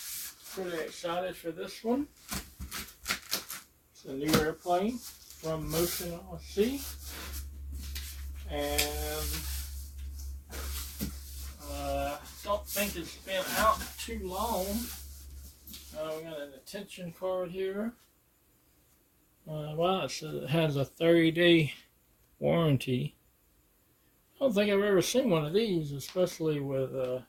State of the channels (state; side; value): identical; both; correlation 1.00